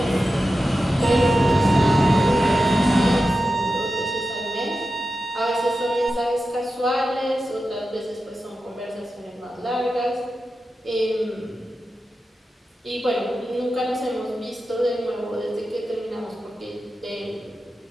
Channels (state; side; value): normal; both; correlation 0.92